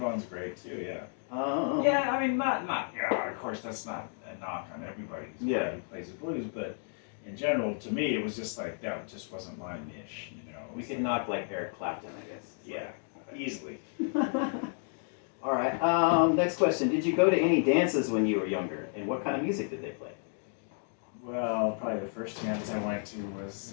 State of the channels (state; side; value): silent; right; 56 dB below the other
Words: great too. Yeah. Oh. Yeah, I mean, not. Of course, that's not an knock on everybody Yeah. who plays the blues, but in general, to me, it was just like, that just wasn't my niche, you know. It We was could like, knock like Eric Clapton, I guess. yeah, easily. All right. Next question. Did you go to any dances when you were younger, and what kind of music did they play? Well, probably the first dance I went to was